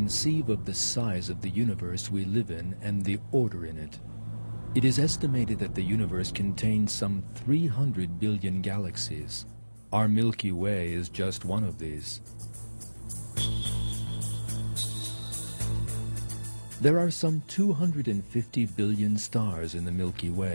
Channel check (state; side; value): inverted; both; correlation -1.00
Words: of the size of the universe we live in and the order in it. It is estimated that the universe contains some 300 billion galaxies. Our Milky Way is just one of these. There are some 250 billion stars in the Milky